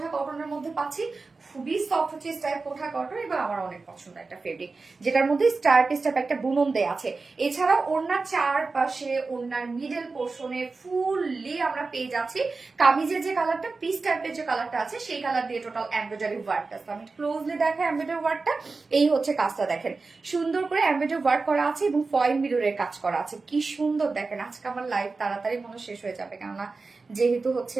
কটনের মধ্যে পাচ্ছি, খুবই সফট হচ্ছে স্ট্রাইপ কোঠা কটন এবং আমার অনেক পছন্দ একটা ফেব্রিক, যেটার মধ্যে স্ট্রাইপ একটা বুনন দেয়া আছে। এছাড়াও ওড়নার চারপাশে ওড়নার মিডল পোর্শনে ফুললি আমরা পেয়ে যাচ্ছি কামিজের যে কালারটা পিস টাইপের যে কালারটা আছে সেই কালার দিয়ে টোটাল এমব্রয়ডারি ওয়ার্কটা। আমি ক্লোজলি দেখা এমব্রয়ডারি ওয়ার্কটা, এই হচ্ছে কাজটা দেখেন সুন্দর করে এমব্রয়ডারি ওয়ার্ক করা আছে এবং ফয়েল মিররের কাজ করা আছে। কি সুন্দর দেখেন। আজকে আমার লাইভ তাড়াতাড়ি মনে শেষ হয়ে যাবে, কেননা যেহেতু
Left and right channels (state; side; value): quieter; left; 4.0 dB